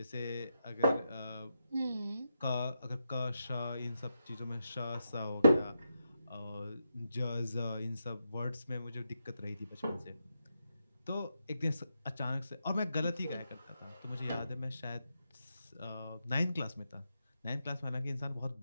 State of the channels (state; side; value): inverted; both; correlation -0.85